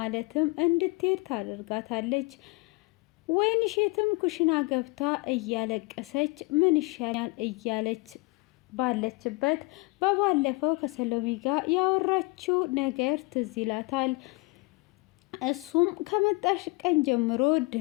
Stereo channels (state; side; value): quieter; right; 25.1 dB